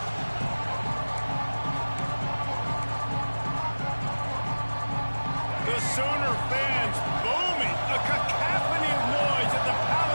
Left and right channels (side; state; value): both; inverted; correlation -1.00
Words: The Sooner fans booming. A cacophony of noise at the